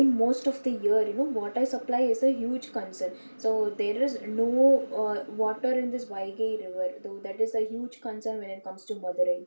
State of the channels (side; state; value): both; inverted; correlation -1.00